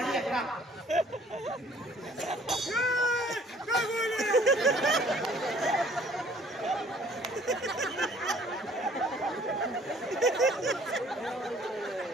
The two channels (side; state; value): both; normal; correlation 0.56